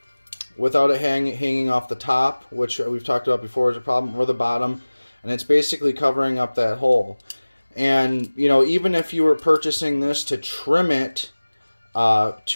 Without it hanging off the top, which we've talked about before is a problem, or the bottom, and it's basically covering up that hole. And, you know, even if you were purchasing this to trim it,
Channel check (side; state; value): both; inverted; correlation -1.00